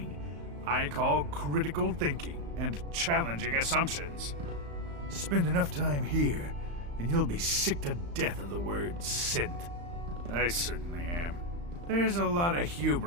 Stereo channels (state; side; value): late; left; 35 ms